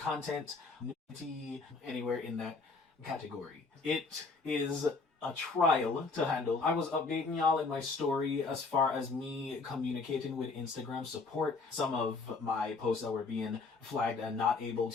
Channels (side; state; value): right; quieter; 4.1 dB